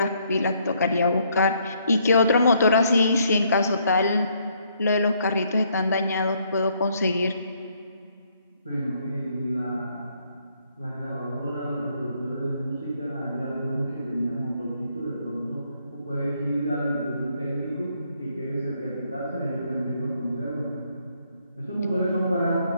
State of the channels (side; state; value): both; inverted; correlation -0.70